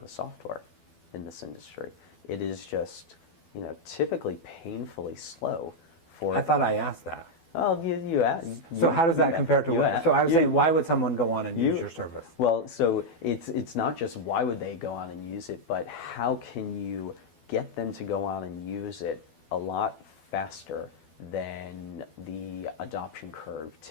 of software in this industry? It is just, typically painfully slow. I thought I asked that. Well, you asked. So how does that compare to what? So I was saying, why would someone go on and use your service? Well, so it's not just why would they go on and use it, but how can you get them to go on and use it a lot faster than the adoption curve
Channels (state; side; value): late; right; 12 ms